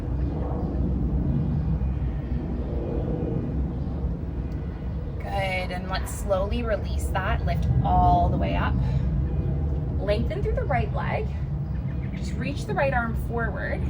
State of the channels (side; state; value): both; identical; correlation 1.00